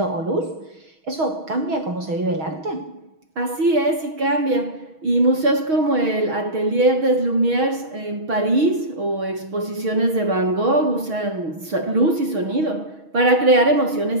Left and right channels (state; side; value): late; left; 6.3 ms